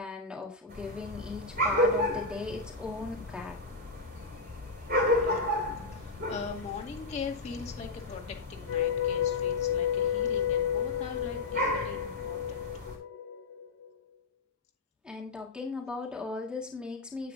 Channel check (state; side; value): quieter; right; 3.6 dB